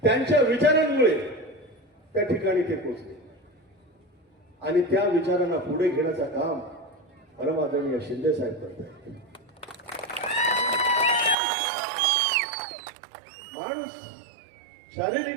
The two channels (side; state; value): left; drops out; at 11.4 s